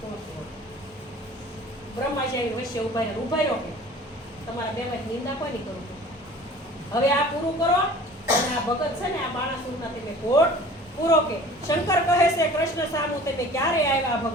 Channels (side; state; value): both; normal; correlation 0.45